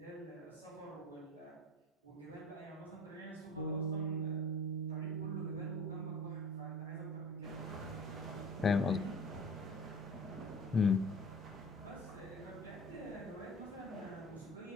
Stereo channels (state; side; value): normal; both; correlation 0.41